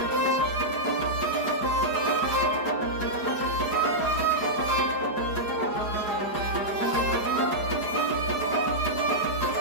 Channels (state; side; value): late; right; 4.8 ms